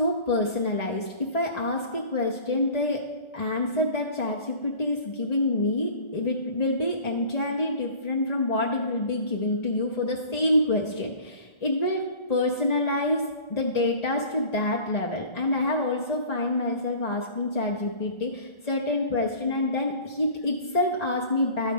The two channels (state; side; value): late; right; 1.3 ms